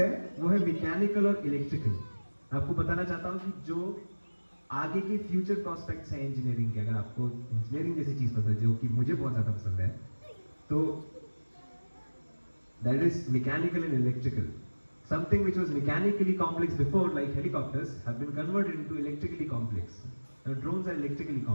वो है मैकेनिकल और इलेक्ट्रिकल। मैं आपको बताना चाहता हूँ कि जो आगे के फ्यूचर प्रोस्पेक्ट्स हैं इंजीनियरिंग के, अगर आपको इंजीनियरिंग जैसी चीज पसंद है जो कि मुझे बहुत ज्यादा पसंद है, तो that is mechanical and electrical. Something which was mechanically complex before, like helicopters, have been converted into electrically complex. Now drones are electrically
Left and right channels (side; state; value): both; inverted; correlation -1.00